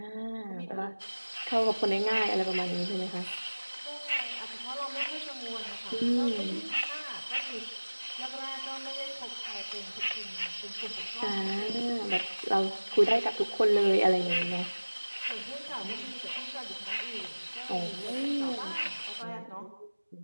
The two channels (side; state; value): both; inverted; correlation -1.00